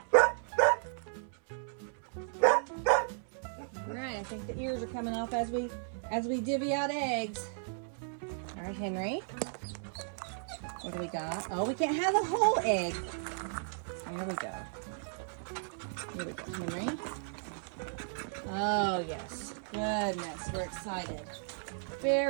All right, I think the ears are coming off as we divvy out eggs. All right, Henry. What do we got? Oh, we can't have the whole egg. There we go. Here we go, Henry. Oh, yes. Goodness, we're excited.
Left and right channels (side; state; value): left; silent; 55 dB below the other